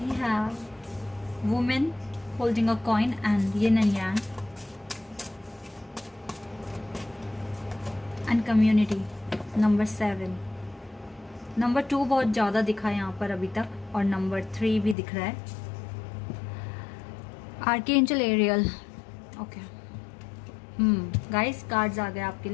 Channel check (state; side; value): drops out; right; at 15.0 s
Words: have woman holding a coin and yin and yang and community, number 7। Number 2 बहुत ज्यादा दिखा है यहाँ पर अभी तक, और नंबर 3 भी दिख रहा है। Archangel Ariel, okay. Guys, cards आ गए आपके